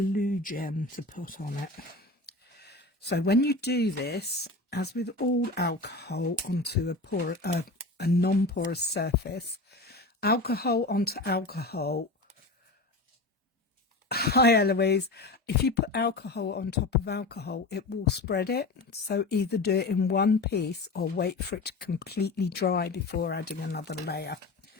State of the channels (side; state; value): right; quieter; 3.1 dB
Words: gem to put on it. So when you do this, as with all alcohol onto a non-porous surface, alcohol onto alcohol. Hi Eloise, if you put alcohol on top of alcohol, it will spread it. So either do it in one piece or wait for it to completely dry before adding another layer.